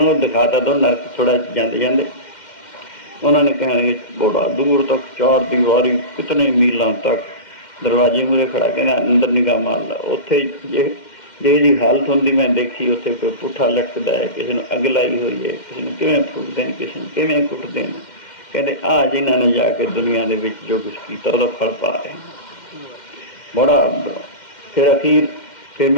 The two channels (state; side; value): late; right; 2.1 ms